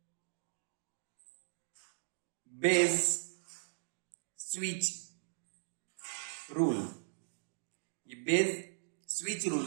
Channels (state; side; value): silent; left; digital silence